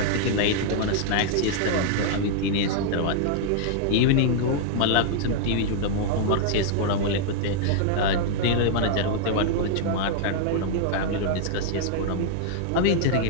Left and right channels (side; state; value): both; different; correlation -0.01